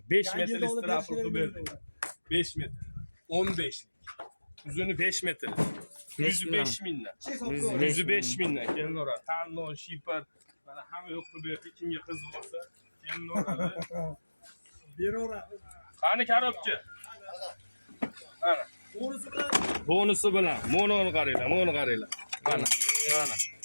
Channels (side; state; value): both; inverted; correlation -1.00